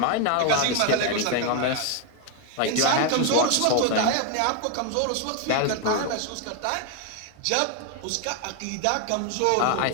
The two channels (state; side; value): different; both; correlation 0.01